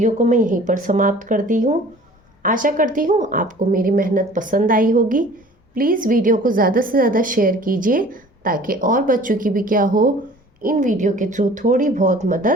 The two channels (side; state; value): both; normal; correlation 0.48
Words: को मैं यहीं पर समाप्त करती हूँ। आशा करती हूँ आपको मेरी मेहनत पसंद आई होगी। प्लीज़ वीडियो को ज़्यादा से ज़्यादा शेयर कीजिए ताकि और बच्चों की भी क्या हो, इन वीडियो के थ्रू थोड़ी बहुत